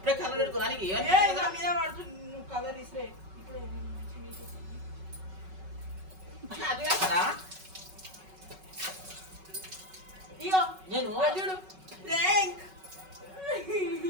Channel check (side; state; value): left; late; 5.3 ms